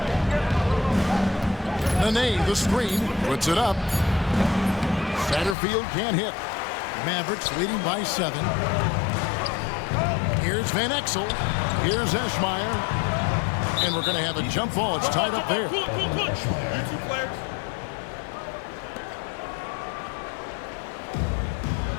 Nene, the screen, puts it up. Satterfield can't hit. Mavericks leading by 7. Here's Van Exel. Here's Eschmeyer. And we're going to have a jump ball. It's tied up there.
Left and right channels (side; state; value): right; drops out; at 5.6 s